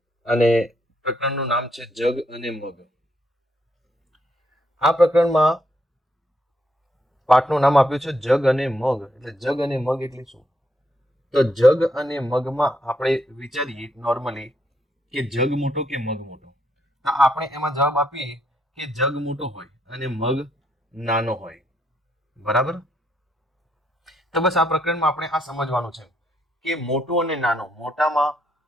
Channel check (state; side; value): normal; both; correlation 0.75